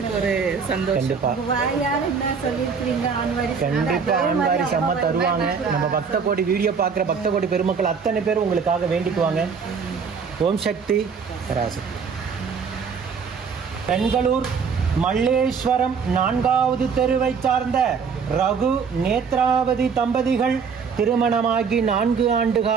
ஒரு சந்தோஷம். கண்டிப்பா ஆண் வாரிசு அம்மா தருவாங்க. நம்ம பக்த கோடி வீடியோ பார்க்குற பக்த கோடி பெருமக்கள் அத்தனை பேரும் உங்களுக்காக வேண்டிக்குவாங்க. ஓம் சக்தி பராசக்தி. பெங்களூர் மல்லேஸ்வரம் 4வது தெருவை சார்ந்த ரகு நேத்ராவதி தம்பதிகள் திருமணமாகி 4 ஆண்டு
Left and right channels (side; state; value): left; quieter; 5.9 dB